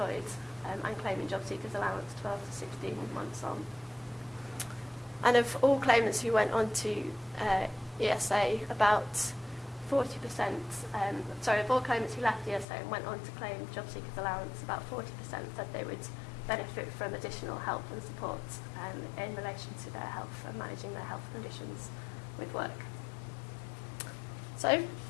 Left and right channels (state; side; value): drops out; right; at 12.7 s